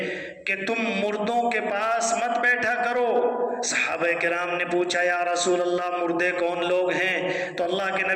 کہ تم مردوں کے پاس مت بیٹھا کرو۔ صحابہ کرام نے پوچھا یا رسول اللہ مردے کون لوگ ہیں؟ تو اللہ کے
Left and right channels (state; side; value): identical; both; correlation 1.00